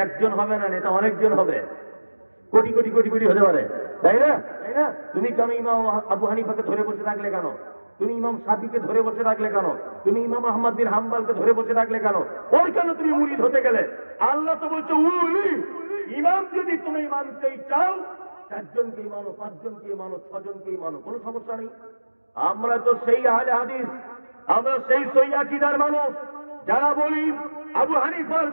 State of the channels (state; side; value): inverted; both; correlation -1.00